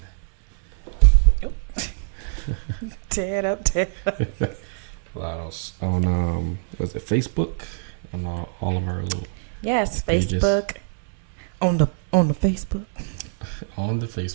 Tear it up. On was it Facebook? On all of our little Yes, pages. Facebook. On the Facebook. On the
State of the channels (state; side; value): silent; left; 63 dB below the other